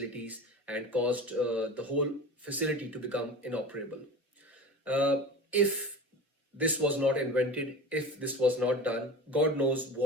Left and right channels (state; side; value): normal; both; correlation 0.33